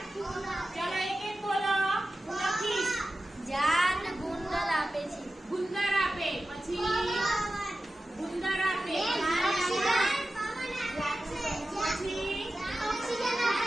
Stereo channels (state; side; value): normal; both; correlation 0.94